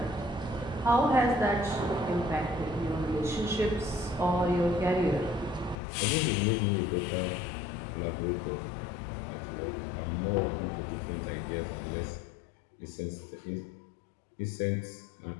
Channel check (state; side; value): drops out; right; at 5.8 s